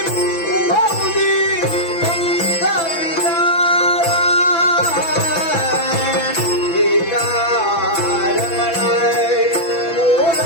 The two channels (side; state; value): right; late; 6.0 ms